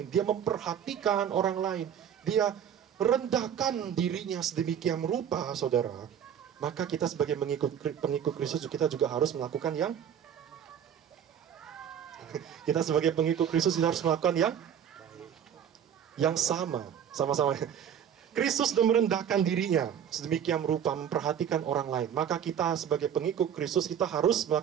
dia memperhatikan orang lain, dia rendahkan dirinya sedemikian rupa, saudara, maka kita sebagai pengikut Kristus, kita juga harus melakukan kita sebagai pengikut Kristus harus melakukan yang sama-sama. Kristus sudah merendahkan dirinya sedemikian rupa, memperhatikan orang lain, maka kita sebagai pengikut Kristus, kita harus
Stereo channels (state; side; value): quieter; left; 8.9 dB